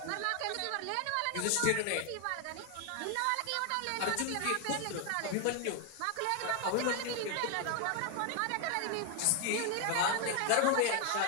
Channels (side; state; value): both; different; correlation 0.01